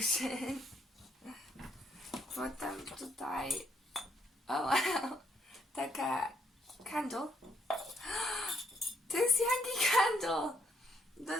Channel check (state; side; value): normal; both; correlation 0.72